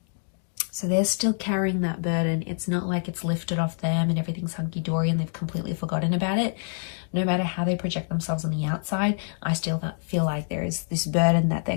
So they're still carrying that burden. It's not like it's lifted off them and everything's hunky-dory and they've completely forgotten about it. No matter how they project themselves on the outside, I still feel like there is this burden that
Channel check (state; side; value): silent; right; digital silence